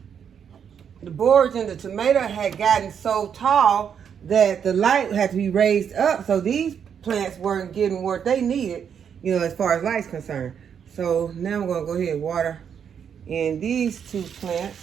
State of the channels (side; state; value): left; quieter; 7.8 dB